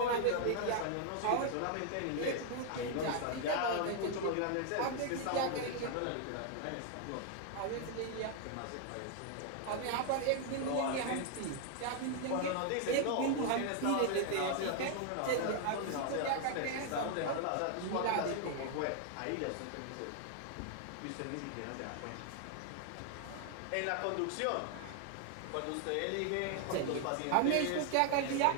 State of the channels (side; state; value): both; different; correlation 0.00